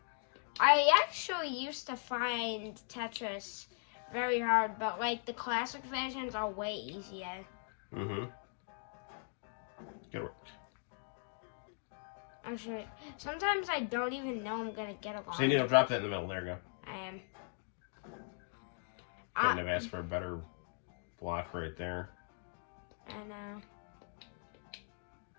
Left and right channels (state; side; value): silent; right; 52 dB below the other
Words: I actually used to find Tetris very hard, but like the classic versions are way easier. Mm-hmm. Good work. Actually, sometimes I don't even know I'm gonna get along. So you need to drop that in the middle. There you go. I am. Couldn't have asked for a better block right there. I know.